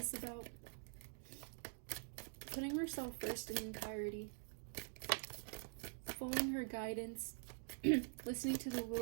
about. Putting herself first in entirety. Following her guidance. Listening to the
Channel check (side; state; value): left; silent; digital silence